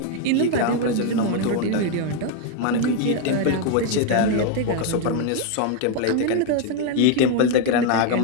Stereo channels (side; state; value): both; different; correlation 0.01